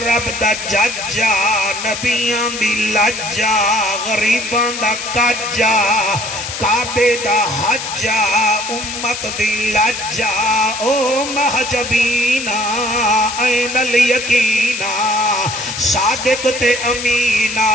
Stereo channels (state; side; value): noise; left; hiss, 6 dB below the sound